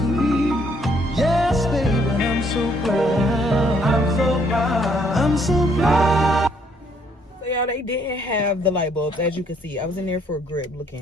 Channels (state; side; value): normal; both; correlation 0.67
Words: Yes, baby, I'm so proud. I'm so proud. I'm so proud. So y'all, they didn't have the light bulbs, as you can see. I was in there for a grip